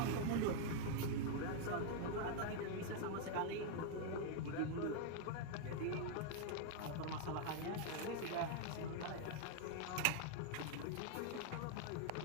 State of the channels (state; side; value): different; both; correlation 0.00